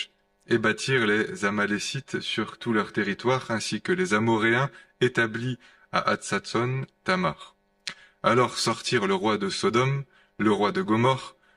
et bâtirent les Amalécites sur tout leur territoire, ainsi que les Amoréens établis à Hatzatson, Tamar. Alors sortirent le roi de Sodome, le roi de Gomorrhe,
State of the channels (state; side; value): identical; both; correlation 1.00